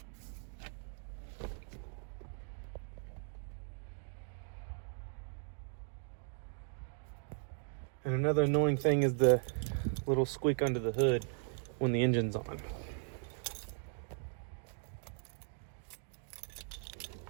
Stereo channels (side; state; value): left; silent; 52 dB below the other